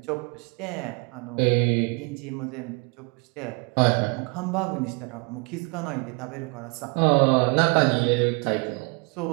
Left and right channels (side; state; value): left; quieter; 30.8 dB